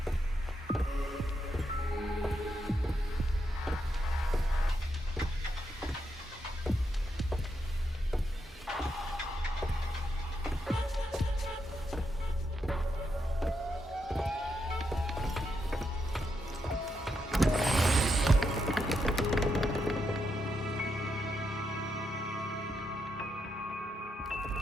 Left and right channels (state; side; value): normal; both; correlation 0.82